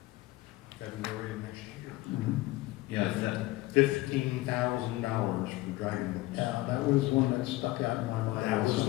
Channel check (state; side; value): quieter; right; 18.7 dB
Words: February of next year. Yeah, that, $15,000 for driving boats. Yeah, that was one that stuck out in my mind. That was